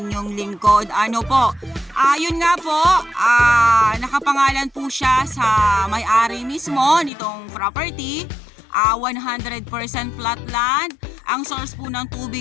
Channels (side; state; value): right; drops out; at 7.1 s